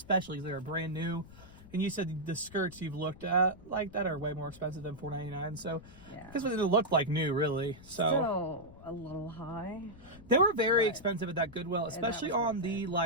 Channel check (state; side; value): noise; left; rumble, 20 dB below the sound